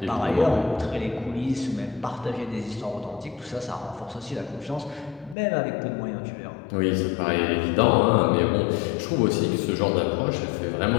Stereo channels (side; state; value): right; drops out; at 5.4 s